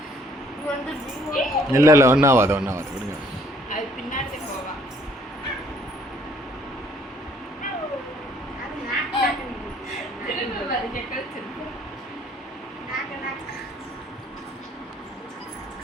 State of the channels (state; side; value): normal; both; correlation 0.62